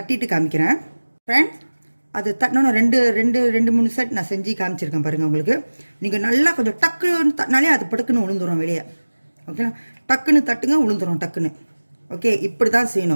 காமிக்கிறேன் ஃப்ரெண்ட்ஸ். அது தட்டினோன்னா ரெண்டு மூணு செட் நான் செஞ்சு காமிச்சிருக்கேன் பாருங்கள் உங்களுக்கு. நீங்கள் நல்லா கொஞ்சம் டக்குன்னு தட்டினாலே அது படுக்குன்னு உளுந்துடும் வெளியே. ஓகேங்களா. டக்குன்னு தட்டுங்க, உளுந்துடும் டக்குன்னு. ஓகே, இப்படி தான்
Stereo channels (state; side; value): inverted; both; correlation -1.00